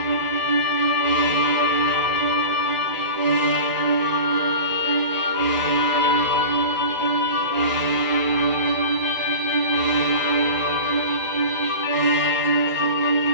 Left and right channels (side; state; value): both; inverted; correlation -0.34